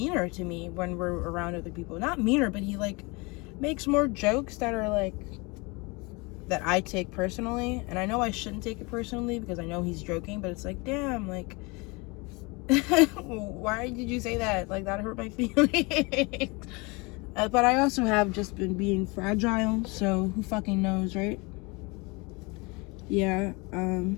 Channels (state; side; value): quieter; right; 27.3 dB